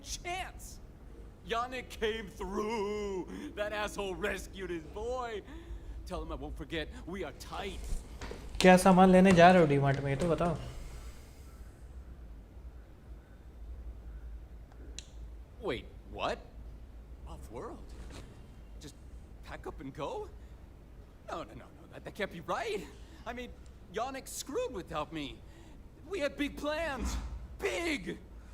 chance. Yannick came through. That asshole rescued his boy. Tell him I won't forget. We are tight. क्या सामान लेने जा रहे हो डीमार्ट में, ये तो बताओ। Wait, what? Off-world? Just pack up and go? No, that can't be right. I mean, Yannick screwed without me. We had big plans. Big!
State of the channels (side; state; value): both; identical; correlation 1.00